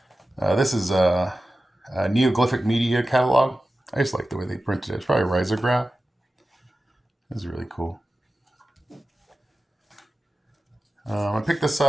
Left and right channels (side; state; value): both; normal; correlation 0.94